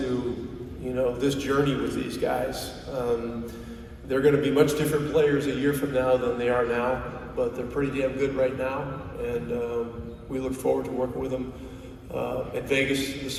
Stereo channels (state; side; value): identical; both; correlation 1.00